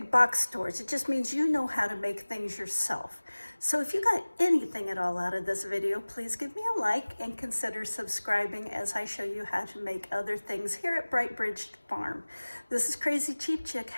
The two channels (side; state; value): both; inverted; correlation -1.00